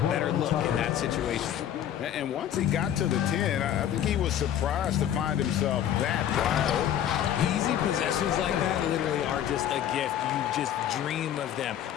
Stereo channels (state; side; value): quieter; right; 10.5 dB